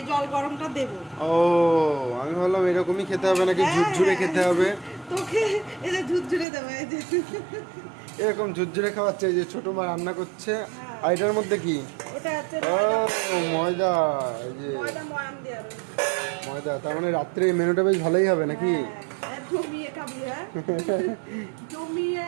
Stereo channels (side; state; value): left; drops out; at 6.5 s